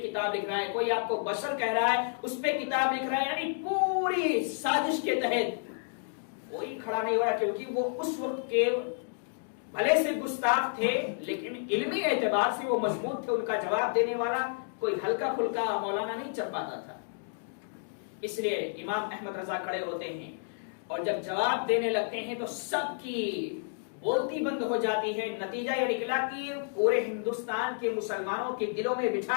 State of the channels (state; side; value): silent; right; digital silence